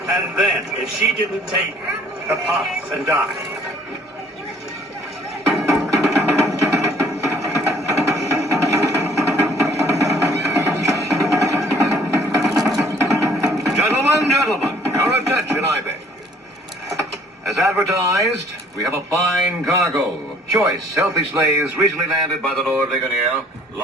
And then, if she didn't take the puff and die. Gentlemen, your attention, I beg. As advertised, we have a fine cargo of choice, healthy slaves recently landed by the Lord Ligonier,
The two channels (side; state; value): both; normal; correlation 0.58